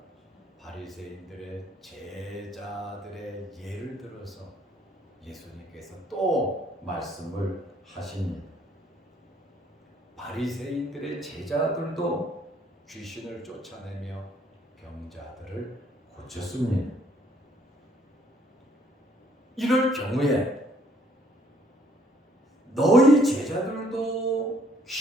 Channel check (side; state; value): both; normal; correlation 0.64